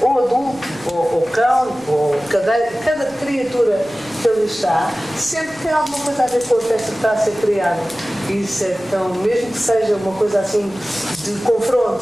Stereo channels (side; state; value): left; noise; rumble, 27 dB below the sound